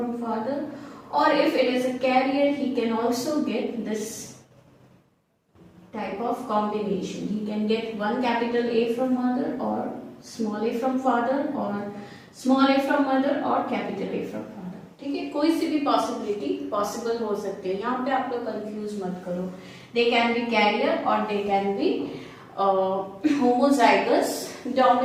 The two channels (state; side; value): identical; both; correlation 1.00